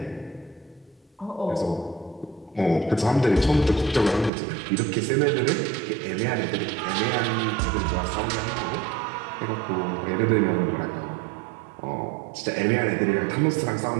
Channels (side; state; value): left; drops out; at 4.3 s